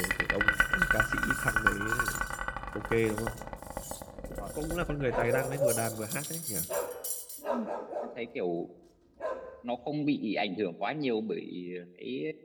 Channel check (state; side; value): identical; both; correlation 1.00